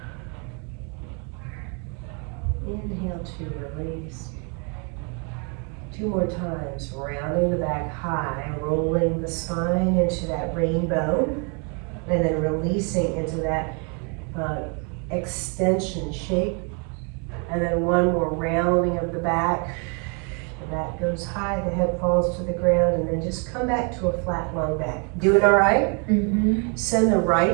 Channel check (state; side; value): quieter; left; 36.5 dB